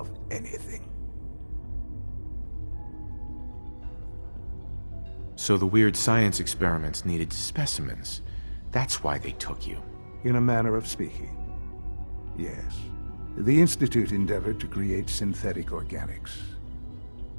anything. So the weird science experiments needed specimens. That's why they took you. In a manner of speaking. Yes. The Institute endeavored to create synthetic organics.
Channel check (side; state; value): both; inverted; correlation -1.00